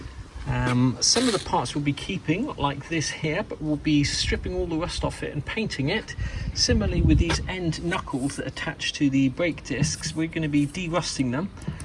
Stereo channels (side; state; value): both; identical; correlation 1.00